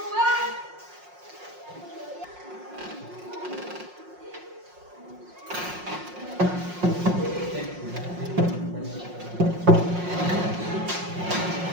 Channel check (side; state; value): left; late; 5.5 ms